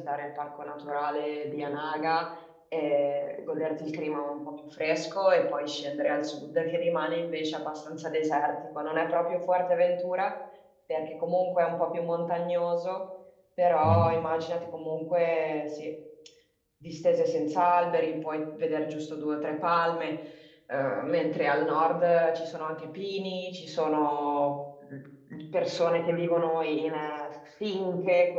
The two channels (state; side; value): identical; both; correlation 1.00